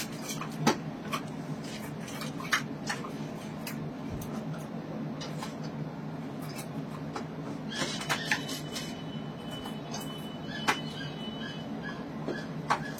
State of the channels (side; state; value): both; identical; correlation 1.00